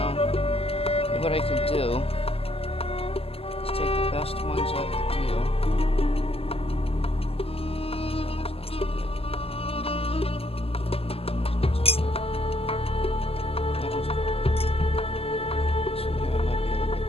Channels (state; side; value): late; right; 0.28 ms